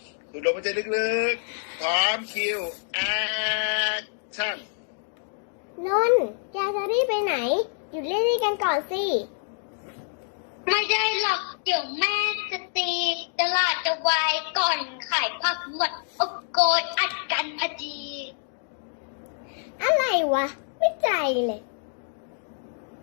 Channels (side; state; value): right; silent; digital silence